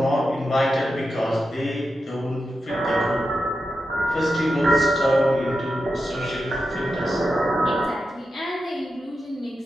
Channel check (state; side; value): normal; both; correlation 0.89